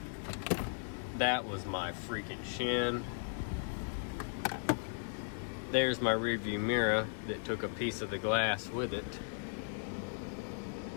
That was my freaking shin. There's my rearview mirror that took a piece of the glass with it.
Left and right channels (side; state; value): right; silent; digital silence